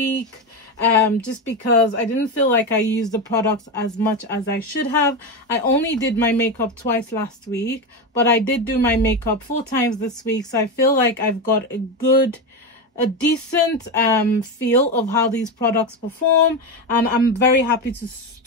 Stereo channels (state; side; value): normal; both; correlation 0.15